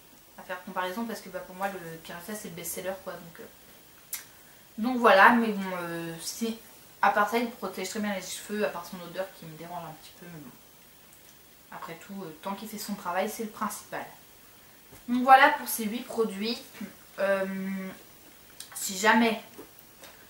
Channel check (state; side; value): identical; both; correlation 1.00